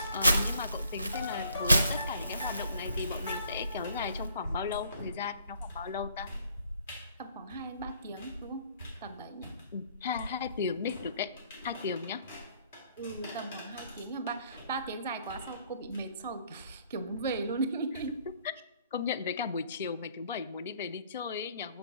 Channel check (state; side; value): inverted; both; correlation -0.62